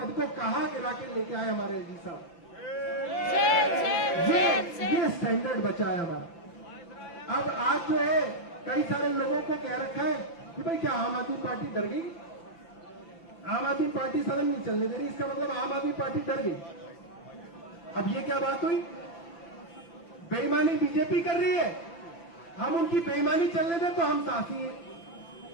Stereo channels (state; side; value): late; right; 6.0 ms